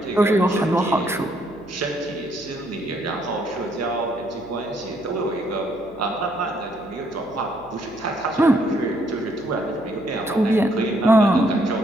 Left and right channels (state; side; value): noise; right; hum, 25 dB below the sound